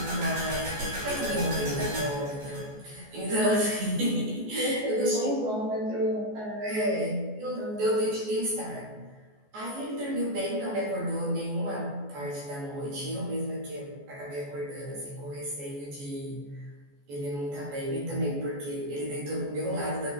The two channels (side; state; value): left; late; 14 ms